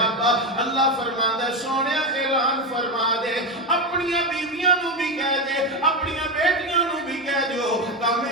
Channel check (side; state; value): both; normal; correlation 0.14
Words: اللہ فرماندا ہے سونیا اعلان فرما دے, اپنی بیویاں نو بھی کہہ دے, اپنی بیٹیاں نو بھی کہہ دیو,